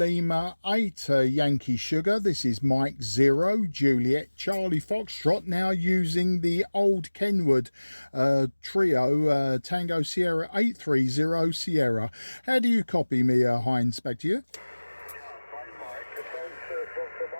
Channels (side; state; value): both; inverted; correlation -1.00